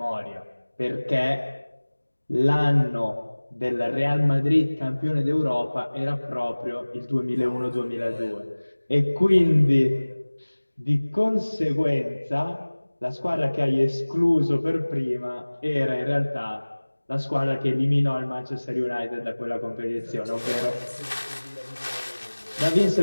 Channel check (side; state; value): both; inverted; correlation -1.00